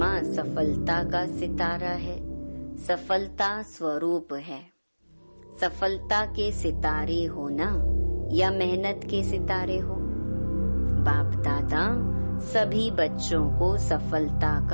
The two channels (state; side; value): inverted; both; correlation -1.00